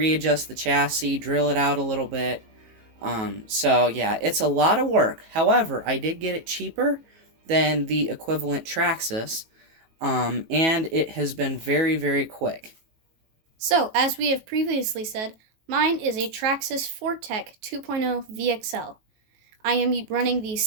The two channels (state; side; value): late; left; 18 ms